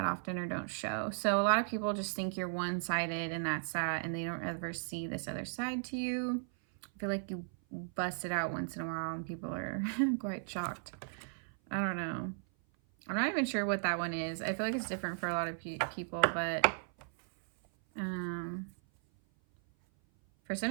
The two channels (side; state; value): left; silent; 54 dB below the other